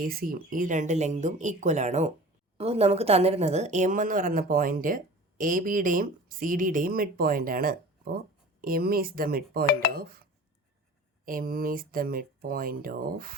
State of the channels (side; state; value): both; normal; correlation 0.40